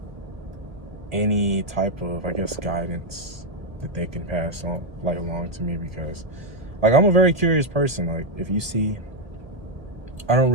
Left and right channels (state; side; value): late; left; 1.2 ms